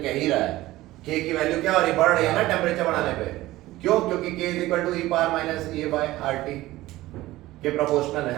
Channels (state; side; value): quieter; left; 17.1 dB